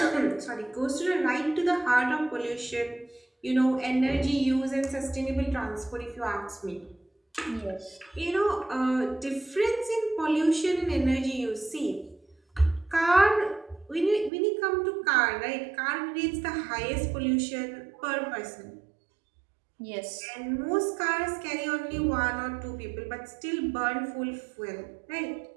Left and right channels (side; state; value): left; drops out; at 14.3 s